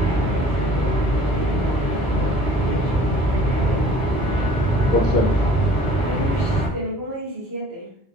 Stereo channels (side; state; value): both; normal; correlation 0.51